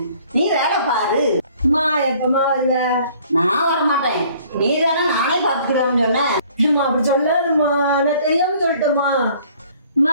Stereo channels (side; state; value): both; inverted; correlation -0.56